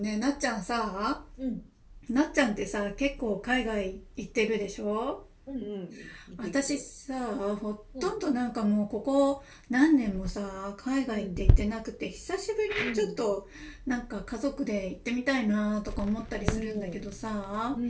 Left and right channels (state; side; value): identical; both; correlation 1.00